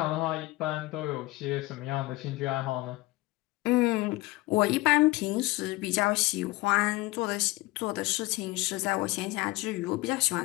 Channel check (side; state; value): right; quieter; 20.5 dB